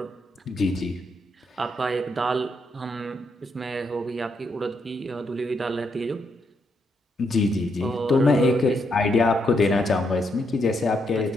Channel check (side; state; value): both; normal; correlation 0.78